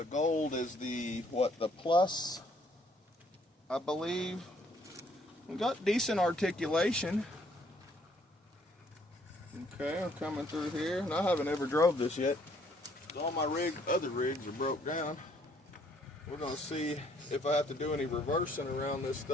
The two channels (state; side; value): normal; both; correlation 0.65